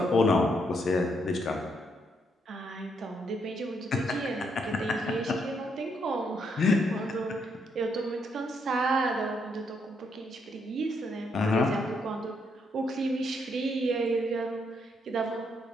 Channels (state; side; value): normal; both; correlation 0.75